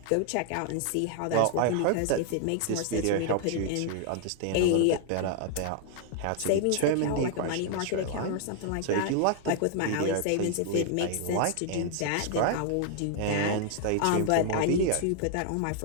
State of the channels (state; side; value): different; both; correlation 0.00